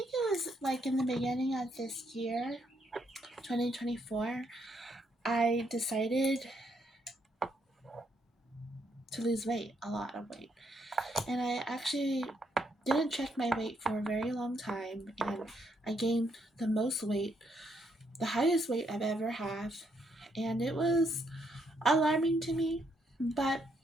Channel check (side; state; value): both; normal; correlation 0.75